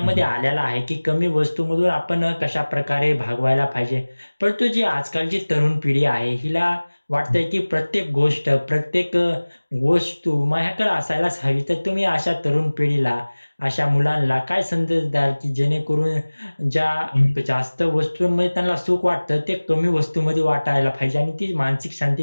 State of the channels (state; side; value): inverted; both; correlation -1.00